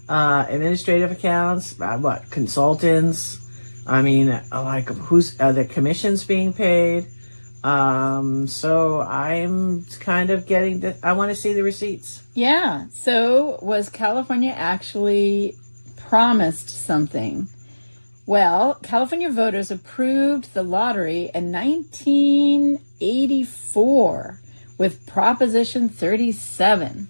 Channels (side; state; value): both; inverted; correlation -1.00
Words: Administrative accounts, consultants. I mean, like who's the commissions being paid? So I'm kind of I want to see the receipts. Yeah. So was California actually promised something? Well, California voters approved the lottery in 1984 with Proposition 37.